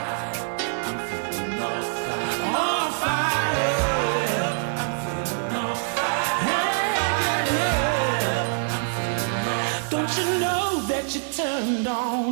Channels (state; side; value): silent; left; 62 dB below the other